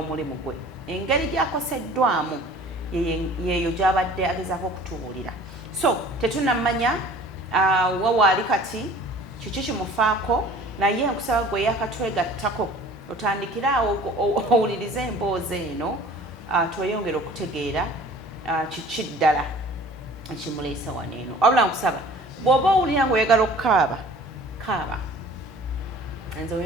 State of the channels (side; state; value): both; normal; correlation 0.47